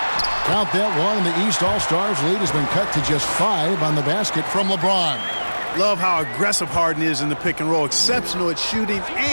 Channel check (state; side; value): inverted; both; correlation -1.00